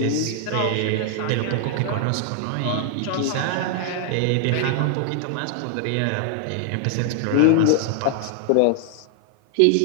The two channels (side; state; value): both; different; correlation 0.00